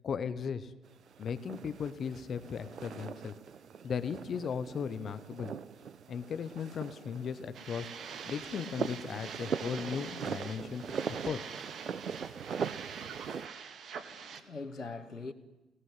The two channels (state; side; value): normal; both; correlation 0.71